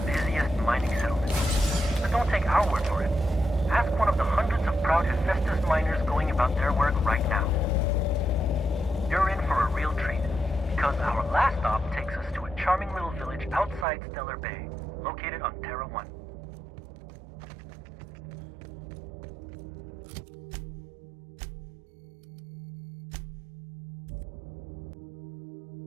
busiest mining settlement. But don't take our word for it. Ask one of the hundreds of proud Hephaestus miners going about their work right now. You're in for a real treat, because our last stop takes us to a charming little village outside Stellar Bay, located on Terra 1.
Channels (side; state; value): left; drops out; at 13.9 s